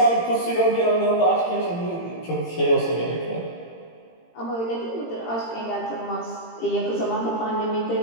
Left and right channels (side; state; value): right; late; 18 ms